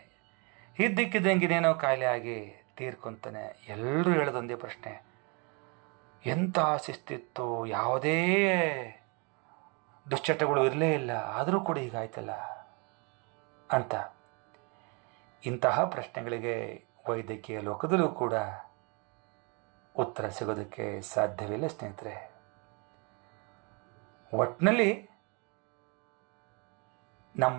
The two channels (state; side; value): quieter; left; 32.4 dB